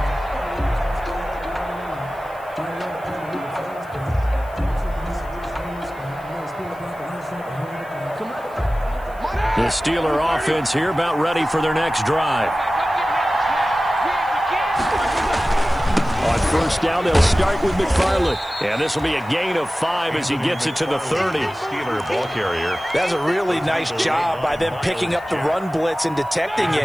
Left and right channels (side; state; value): left; noise; hiss, 27 dB below the sound